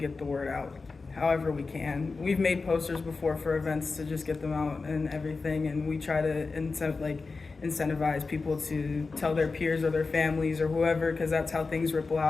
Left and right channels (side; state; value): right; quieter; 4.1 dB